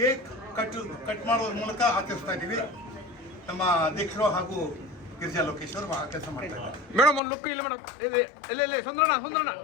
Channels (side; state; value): right; drops out; at 7.2 s